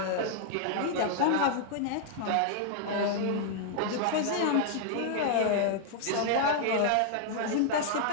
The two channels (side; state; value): both; different; correlation -0.01